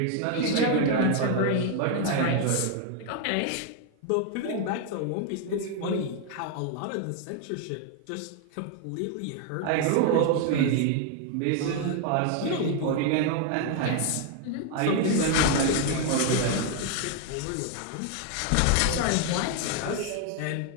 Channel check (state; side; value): different; both; correlation 0.00